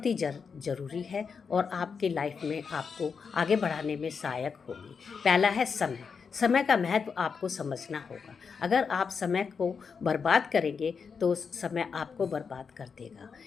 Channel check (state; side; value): quieter; right; 5.8 dB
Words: ही ज़रूरी है और आपके लाइफ में आपको आगे बढ़ाने में सहायक होगी। पहला है समय। समय का महत्व आपको समझना होगा। अगर आप समय को बर्बाद करेंगे तो समय आपको बर्बाद कर देगा।